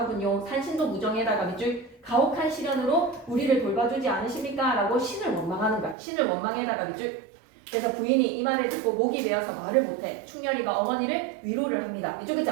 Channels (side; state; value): left; drops out; at 6.0 s